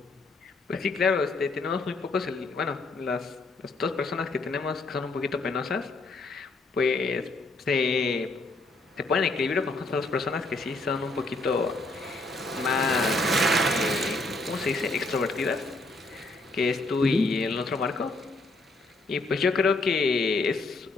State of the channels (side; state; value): right; quieter; 3.1 dB